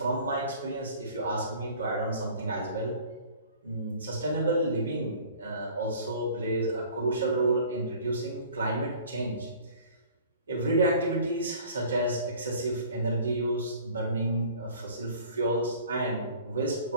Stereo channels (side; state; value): both; inverted; correlation -0.48